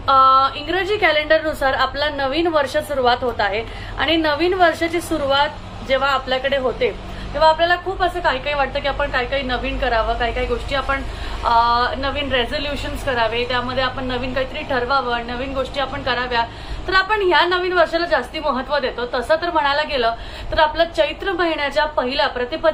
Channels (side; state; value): both; identical; correlation 1.00